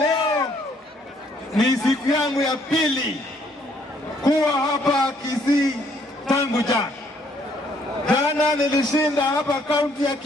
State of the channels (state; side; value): normal; both; correlation 0.66